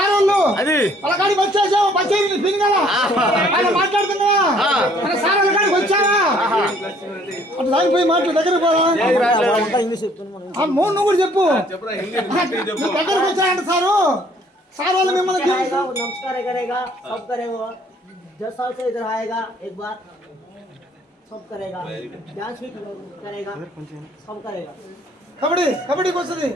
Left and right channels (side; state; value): both; normal; correlation 0.60